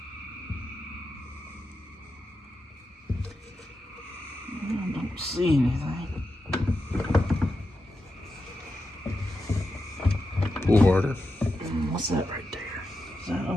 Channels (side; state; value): both; normal; correlation 0.89